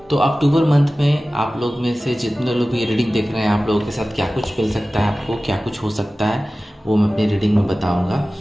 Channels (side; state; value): both; normal; correlation 0.96